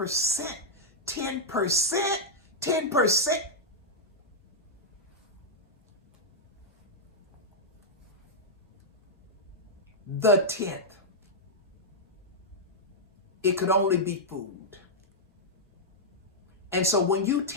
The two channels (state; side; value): normal; both; correlation -0.06